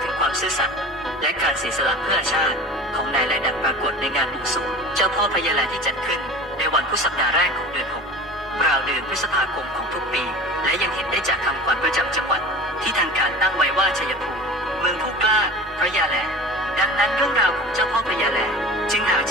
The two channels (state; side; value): normal; both; correlation 0.37